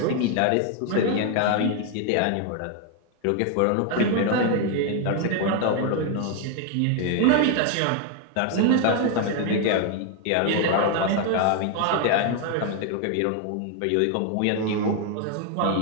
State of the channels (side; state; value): both; different; correlation 0.01